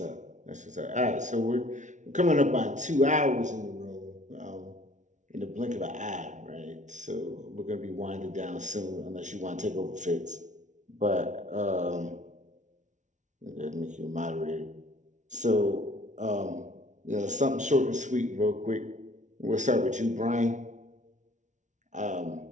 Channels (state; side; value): late; left; 0.36 ms